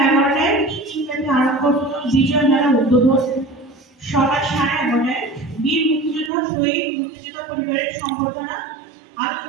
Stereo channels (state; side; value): drops out; left; at 6.3 s